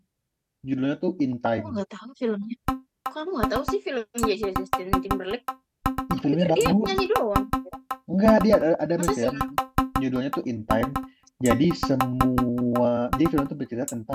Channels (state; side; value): identical; both; correlation 1.00